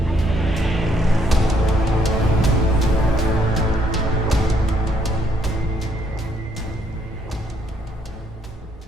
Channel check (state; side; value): normal; both; correlation 0.70